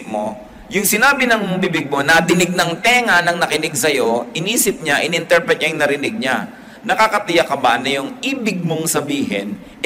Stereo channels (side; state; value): both; identical; correlation 1.00